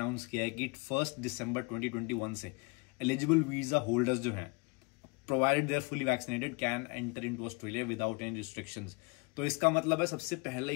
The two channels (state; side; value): quieter; right; 28.9 dB